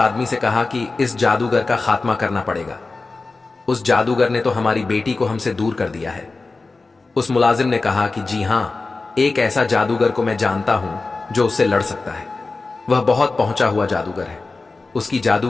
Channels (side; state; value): right; quieter; 3.7 dB